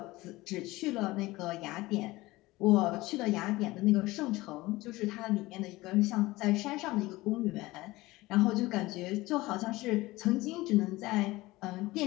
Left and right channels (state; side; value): quieter; right; 19.7 dB